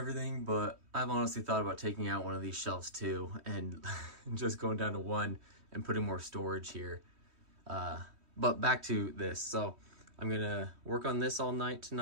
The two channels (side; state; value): left; late; 3.1 ms